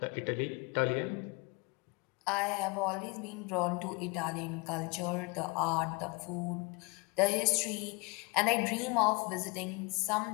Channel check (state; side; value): quieter; right; 28.8 dB